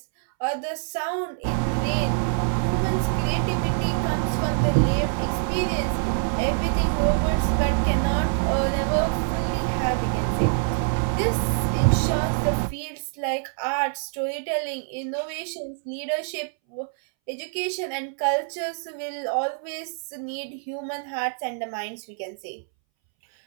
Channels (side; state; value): left; silent; 62 dB below the other